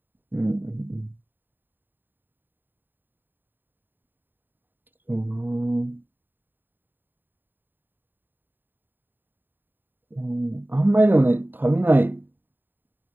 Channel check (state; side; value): late; left; 0.093 ms